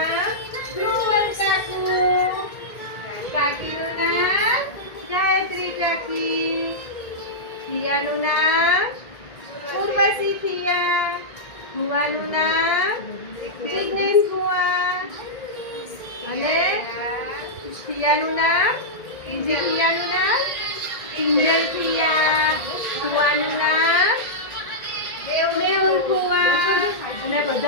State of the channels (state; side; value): late; right; 1.8 ms